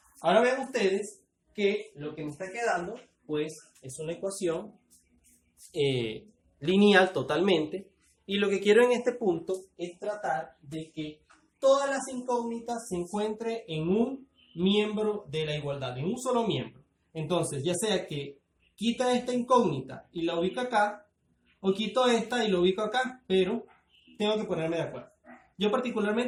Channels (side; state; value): both; identical; correlation 1.00